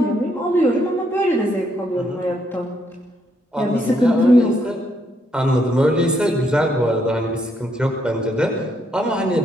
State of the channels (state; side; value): normal; both; correlation 0.74